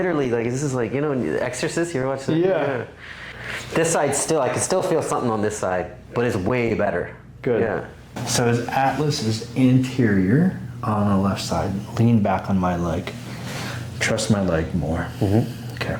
like, this is like, you know, Exorcist, you ever watch that? Yeah. This side still, I can still feel something on this side, but it's way better. Good. Yeah. So his atlas is anterior on the left side. Lean back on my leg. Trust my leg more. Okay.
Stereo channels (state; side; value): identical; both; correlation 1.00